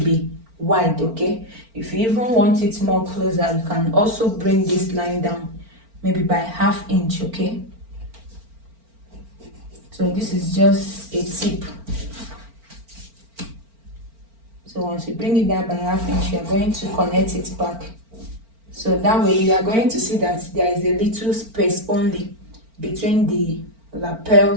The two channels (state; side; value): late; left; 4.4 ms